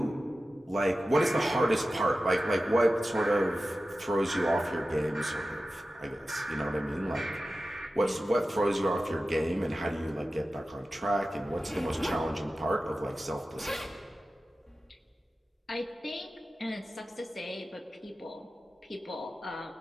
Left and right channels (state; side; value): normal; both; correlation 0.94